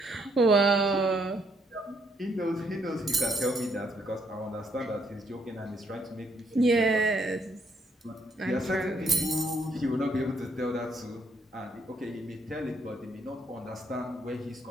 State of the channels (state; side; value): normal; both; correlation 0.71